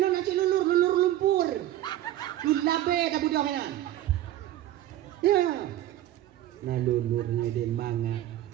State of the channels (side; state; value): left; quieter; 13.7 dB